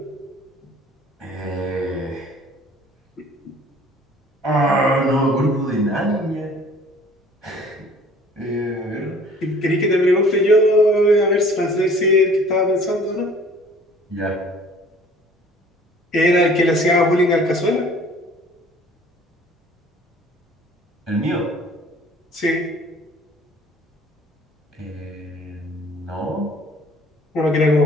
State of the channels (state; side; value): normal; both; correlation 0.52